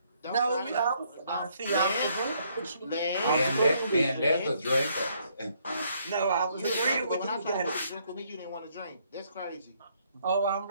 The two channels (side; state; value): both; inverted; correlation -0.69